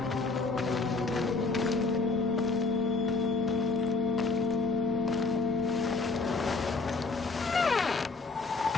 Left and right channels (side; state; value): right; quieter; 3.8 dB